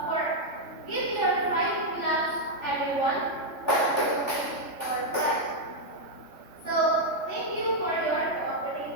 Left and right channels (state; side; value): late; right; 3.3 ms